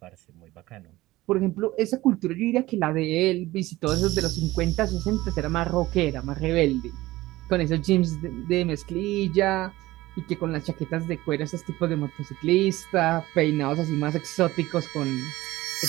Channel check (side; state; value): left; quieter; 17.9 dB